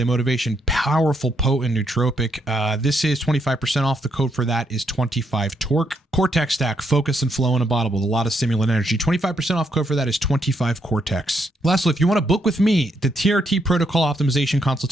motivation. Powerful, potent nootropic. This is 25% off. The code for that is 25 Torque. Cortex Stack. Focus and flow in a bottle with a lot of stimulant energy. 25% off. Code for that is 25 Cortex. Lastly, if you want to book with me, the TRT protocol optimization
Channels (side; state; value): both; normal; correlation 0.77